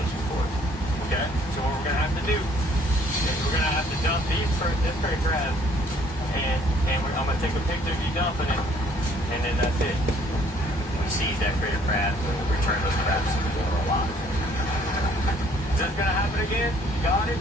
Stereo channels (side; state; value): both; normal; correlation 0.61